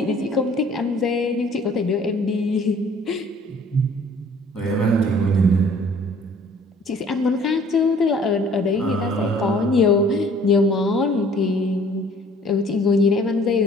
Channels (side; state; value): both; normal; correlation 0.54